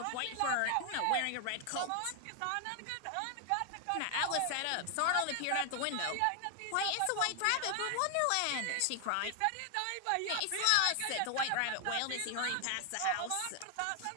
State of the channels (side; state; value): both; different; correlation 0.00